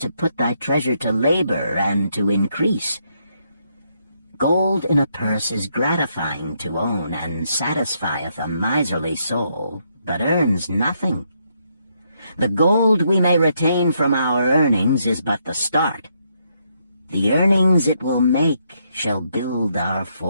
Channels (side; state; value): both; inverted; correlation -0.76